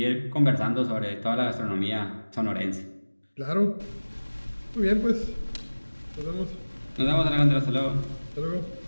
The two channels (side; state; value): both; inverted; correlation -1.00